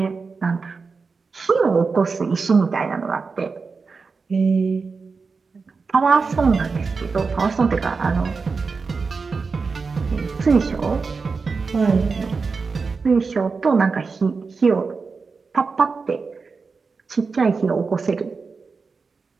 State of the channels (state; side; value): quieter; left; 4.7 dB